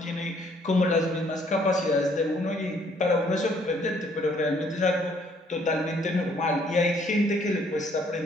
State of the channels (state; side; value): normal; both; correlation 0.64